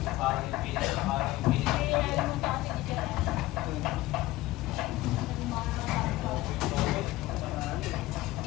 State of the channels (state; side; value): quieter; right; 17.7 dB